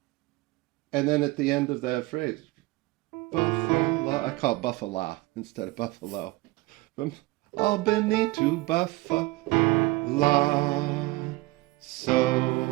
at the end of that phrase, Buffalo, I call it Buffalo instead of Buffalo. From Albany to Buffalo, so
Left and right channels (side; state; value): left; quieter; 20.8 dB